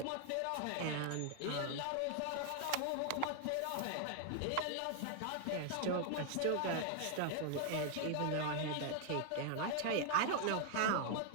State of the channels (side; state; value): both; different; correlation 0.00